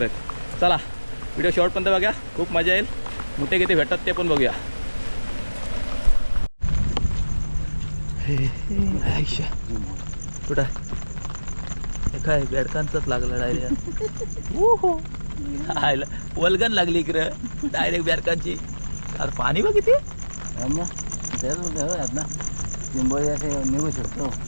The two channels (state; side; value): inverted; both; correlation -1.00